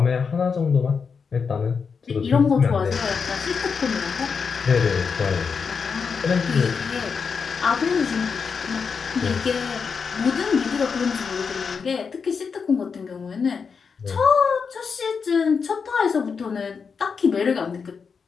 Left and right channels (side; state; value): right; quieter; 5.7 dB